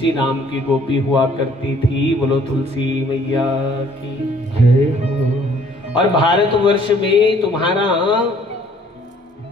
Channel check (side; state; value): both; normal; correlation 0.59